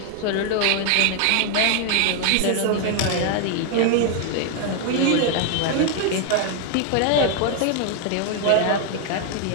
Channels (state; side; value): different; both; correlation 0.00